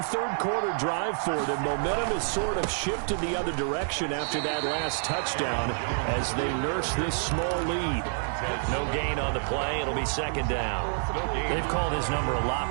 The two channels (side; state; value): left; silent; 59 dB below the other